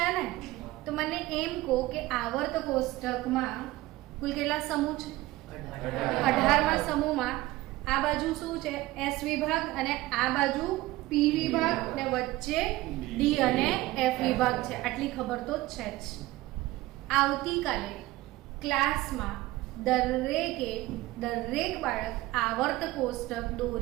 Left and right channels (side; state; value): left; quieter; 18.2 dB